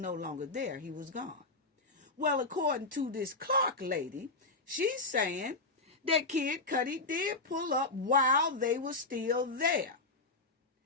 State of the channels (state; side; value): quieter; right; 3.2 dB